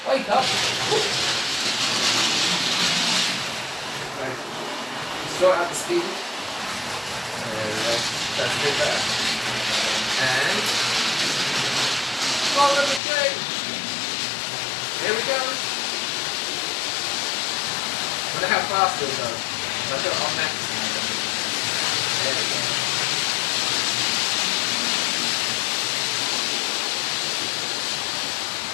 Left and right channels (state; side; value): drops out; right; at 13.0 s